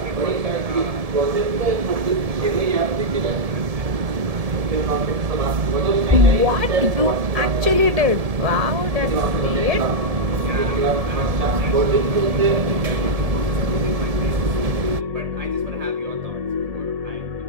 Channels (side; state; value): left; late; 1.7 ms